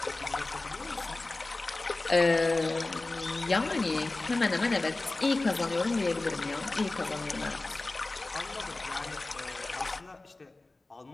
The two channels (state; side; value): quieter; right; 3.1 dB